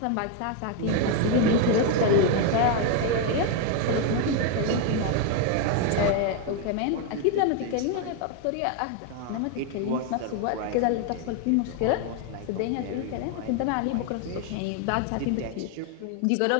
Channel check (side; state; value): both; different; correlation 0.01